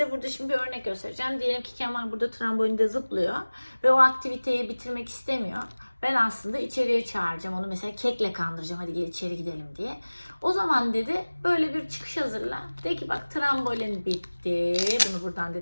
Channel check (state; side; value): inverted; both; correlation -1.00